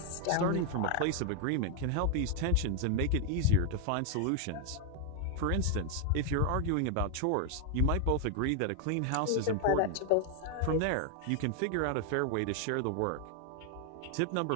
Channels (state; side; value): different; both; correlation 0.01